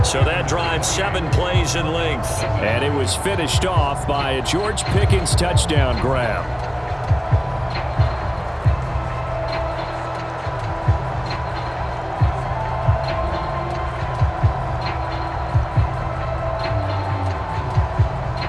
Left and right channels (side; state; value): both; identical; correlation 1.00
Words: So that drive 7 plays in length. And it was finished off by a George Pickens touchdown grab.